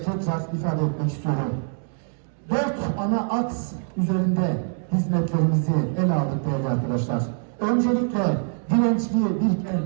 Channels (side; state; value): left; silent; 58 dB below the other